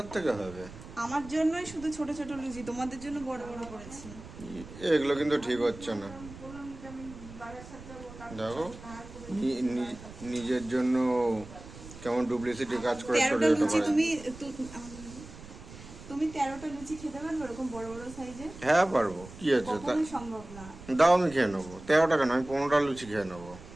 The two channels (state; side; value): noise; right; rumble, 16 dB below the sound